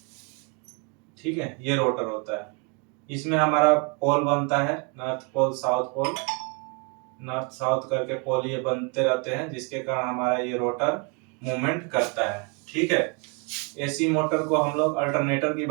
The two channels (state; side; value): quieter; left; 34.7 dB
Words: ठीक है, ये रोटर होता है। इसमें हमारा पोल बनता है, north pole south pole. North south करके पोल ये बनते रहते हैं, जिसके कारण हमारा ये रोटर मूवमेंट करता है। ठीक है। एसी मोटर को हम लोग अल्टरनेटर की